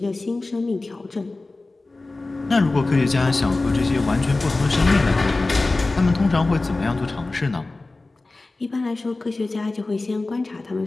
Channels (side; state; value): right; quieter; 3.2 dB